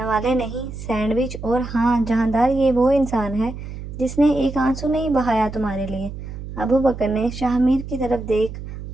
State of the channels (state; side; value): noise; right; hum, 10 dB below the sound